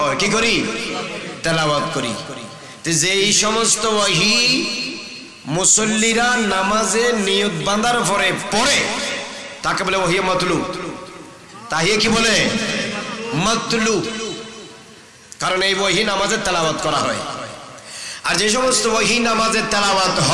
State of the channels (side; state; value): both; identical; correlation 1.00